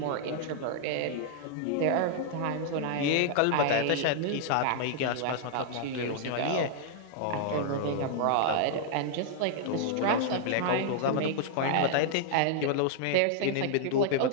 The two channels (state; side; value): different; both; correlation -0.01